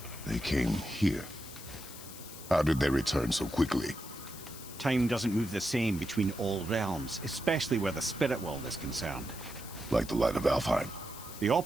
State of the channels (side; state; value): left; noise; hiss, 14 dB below the sound